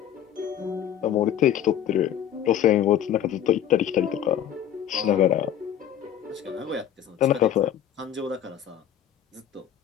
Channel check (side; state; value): right; quieter; 10.2 dB